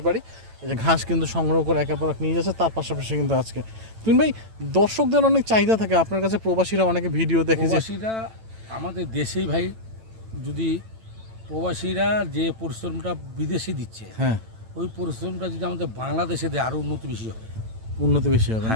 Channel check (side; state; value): left; late; 9.0 ms